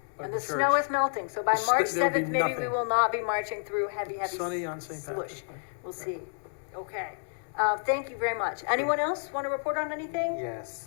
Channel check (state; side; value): silent; right; 58 dB below the other